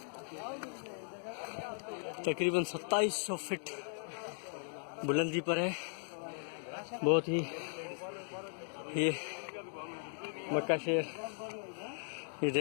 तकरीबन 2700 फीट बुलंदी पर है। बहुत ही ये मक्का शहर ये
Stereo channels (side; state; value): right; silent; 53 dB below the other